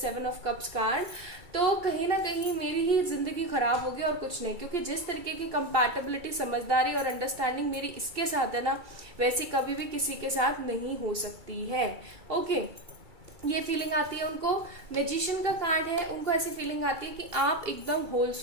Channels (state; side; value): late; left; 2.3 ms